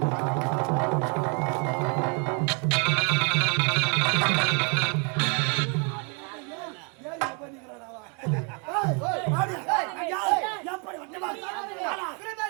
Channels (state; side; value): quieter; left; 35.9 dB